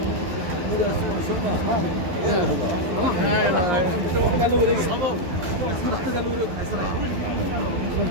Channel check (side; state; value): left; late; 11 ms